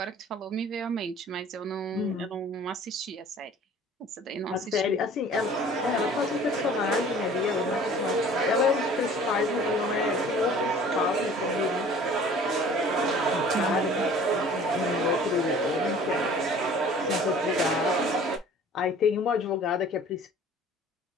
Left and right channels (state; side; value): normal; both; correlation 0.48